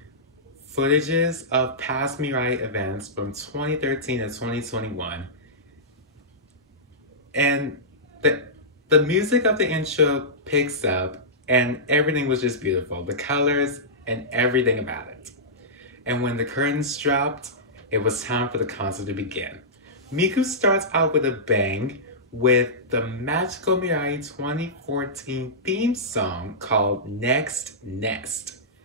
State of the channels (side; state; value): both; normal; correlation -0.16